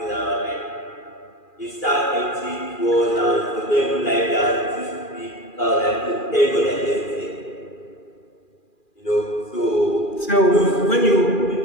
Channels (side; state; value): right; late; 2.4 ms